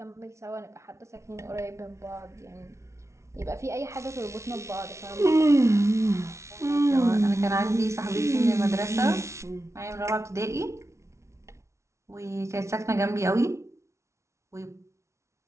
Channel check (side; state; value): left; late; 0.13 ms